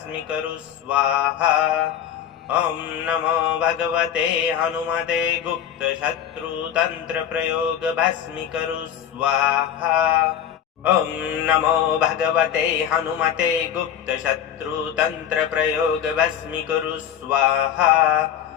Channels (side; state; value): right; quieter; 9.7 dB